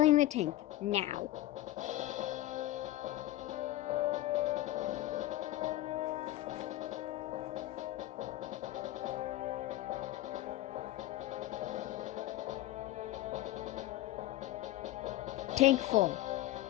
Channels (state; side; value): quieter; right; 15.6 dB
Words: the tank now. Tank full.